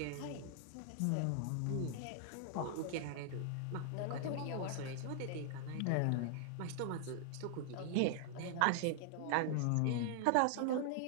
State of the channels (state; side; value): different; both; correlation 0.00